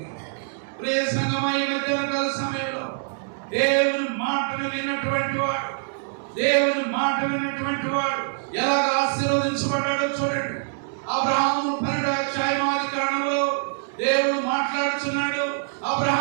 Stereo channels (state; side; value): silent; left; digital silence